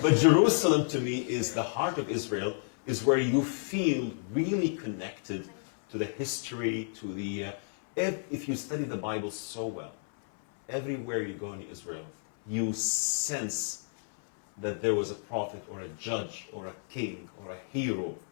Jerusalem to me is the heart of Israel, is where you feel really connected to the history, to the... if you study the Bible so well, everywhere you go in Israel, you sense that there was a prophet or a judge or a king or a hero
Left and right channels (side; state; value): right; silent; 57 dB below the other